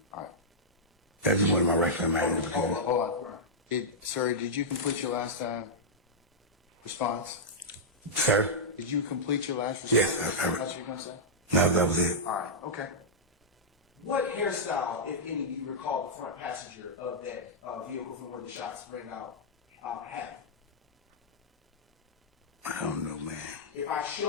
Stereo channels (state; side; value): normal; both; correlation -0.09